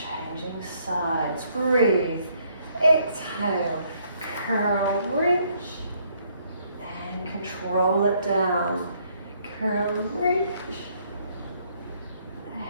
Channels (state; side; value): inverted; both; correlation -0.68